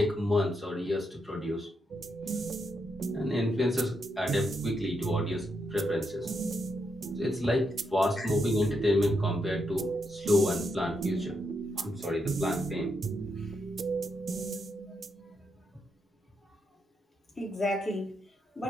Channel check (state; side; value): normal; both; correlation 0.81